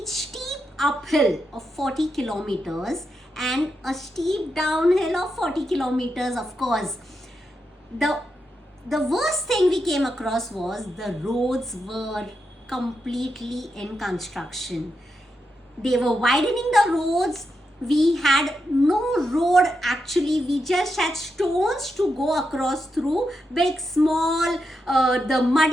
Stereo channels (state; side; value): normal; both; correlation 0.85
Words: steep uphill of 40 kilometers and a steep downhill of 40 kilometers, of course. The worst thing we came across was the roads were completely in construction. They were widening the roads, We had no road actually, we just had stones to go across through, big, small, the